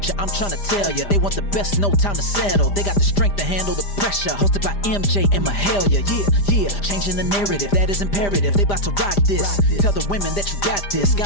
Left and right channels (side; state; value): right; late; 5.0 ms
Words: I'm tryna tell ya. They want the best, no time to settle. They got the strength to handle the pressure. Hosted by MJ and Mahalia. Yeah, changing the narrative, that is imperative. They about to rock this. Tell the women that you got this.